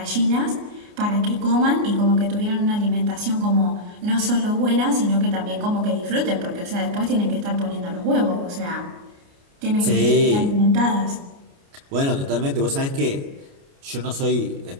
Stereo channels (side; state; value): left; late; 29 ms